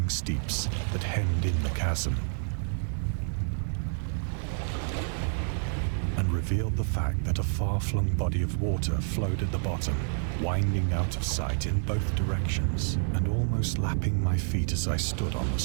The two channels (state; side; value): silent; left; 59 dB below the other